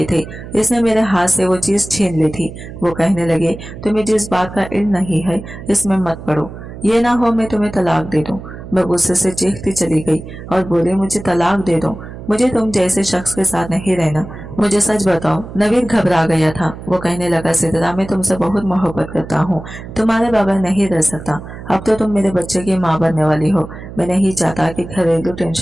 थे। इसने मेरे हाथ से वो चीज छीन ली थी। वो कहने लगे, तुम्हें जिस बात का इल्म नहीं है इसमें मत पड़ो, ये ना हो मैं तुम्हें तलाक दे दूं। मैं गुस्से से चीखती चली गई और बोली, मुझे तलाक दे दो, मुझे तुम जैसे शख्स के साथ नहीं रहना। मुझे सच बताओ। नवीद घबरा गया था। वो कहने लगा, सिद्रा, मैं तुमसे बहुत मोहब्बत करता हूँ, तुम्हारे बगैर नहीं रह सकता। अब तो तुम मेरे बच्चे की माँ बनने वाली हो। मैं नहीं चाहता कि घरेलू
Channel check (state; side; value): noise; right; hum, 13 dB below the sound